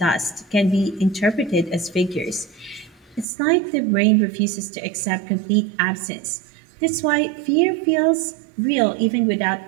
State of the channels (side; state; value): left; drops out; at 3.2 s